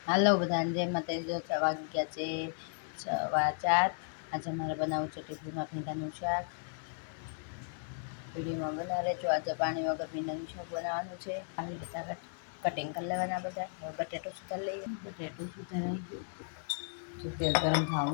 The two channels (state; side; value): silent; right; 55 dB below the other